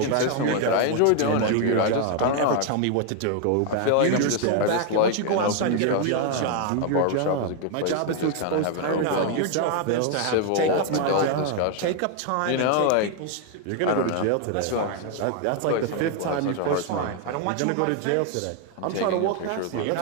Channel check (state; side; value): different; both; correlation 0.00